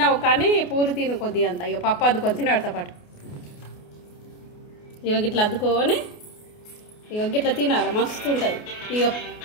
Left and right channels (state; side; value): late; right; 28 ms